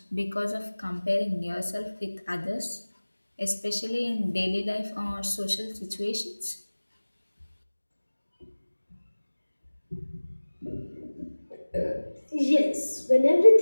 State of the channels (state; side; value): inverted; both; correlation -1.00